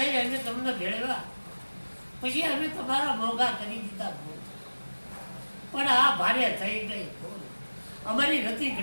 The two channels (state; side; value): inverted; both; correlation -1.00